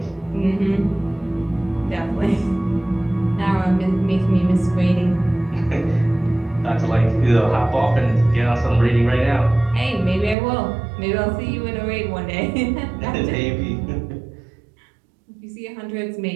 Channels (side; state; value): left; drops out; at 10.4 s